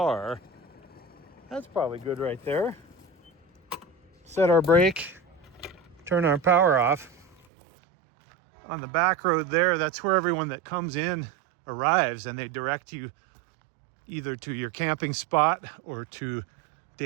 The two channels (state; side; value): drops out; left; at 7.4 s